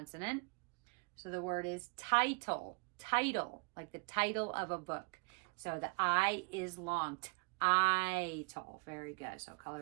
So the word is title, title, like the title of a book. So the I is long, title. Very good. So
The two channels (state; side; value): quieter; left; 33.0 dB